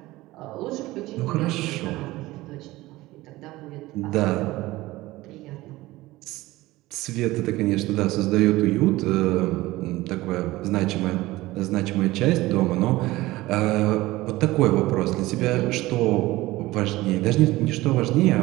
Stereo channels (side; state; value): left; quieter; 18.5 dB